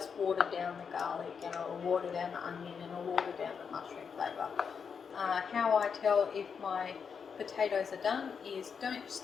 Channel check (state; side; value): quieter; right; 6.3 dB